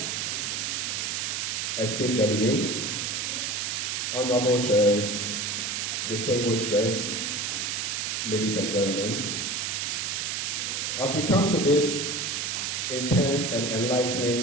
esteemed delegates, honorable chairs, distinguished guests, ladies and gentlemen, as we come to this intense and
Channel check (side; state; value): right; noise; hiss, 1 dB below the sound